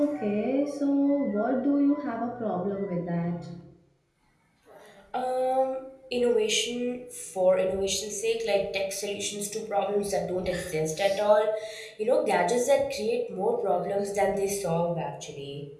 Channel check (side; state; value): both; identical; correlation 1.00